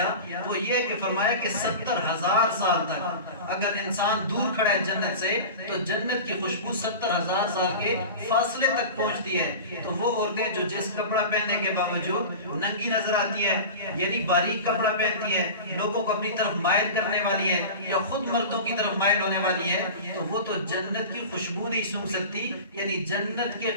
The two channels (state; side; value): inverted; both; correlation -0.32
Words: وہ یہ کہ فرمایا کہ 70,000 سال تک اگر انسان دور کھڑا ہے جنت سے تو جنت کی خوشبو 70,000 سال کے فاصلے تک پہنچتی ہے. تو وہ عورتیں جو جس کپڑا پہننے کے باوجود ننگی نظر آتی ہے, یعنی باریک کپڑا پہنتی ہے, لوگوں کو اپنی طرف مائل کرنے والی ہے یا خود مردوں کی طرف مائل ہونے والی ہے, تو وہ تو جنت کی خوشبو نہیں سونگ سکتی, یعنی جنت کے